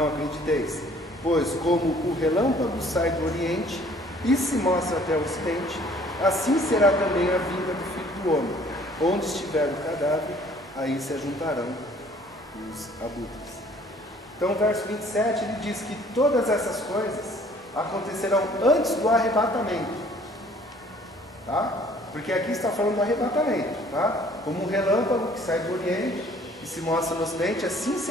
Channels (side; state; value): both; normal; correlation 0.56